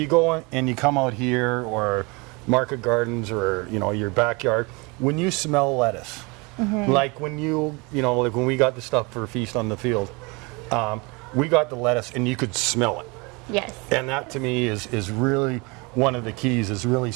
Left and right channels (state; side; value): quieter; left; 27.8 dB